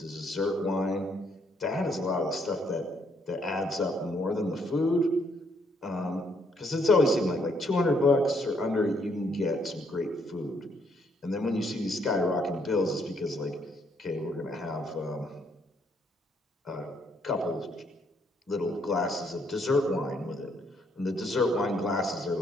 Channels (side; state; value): both; normal; correlation 0.70